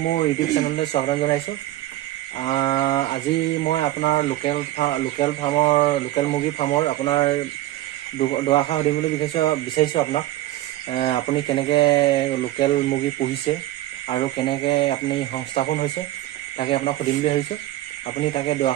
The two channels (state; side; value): quieter; left; 15.3 dB